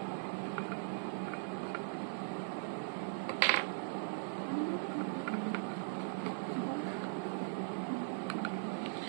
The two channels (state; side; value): silent; left; digital silence